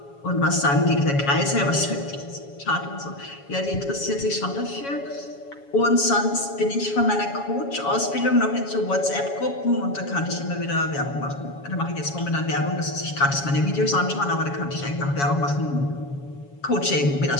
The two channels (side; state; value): right; late; 7.2 ms